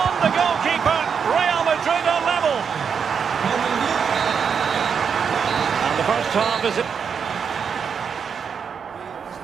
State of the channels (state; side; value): quieter; left; 6.6 dB